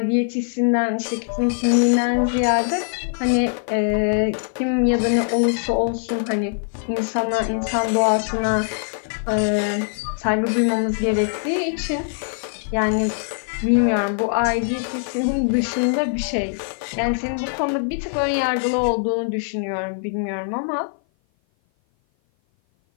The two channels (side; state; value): right; silent; 56 dB below the other